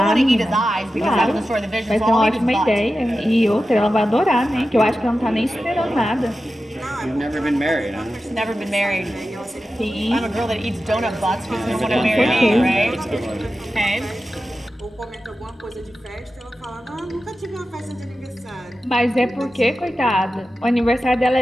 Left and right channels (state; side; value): normal; both; correlation 0.93